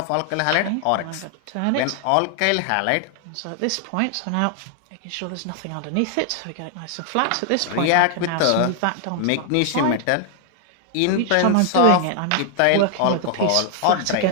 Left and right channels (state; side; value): different; both; correlation 0.00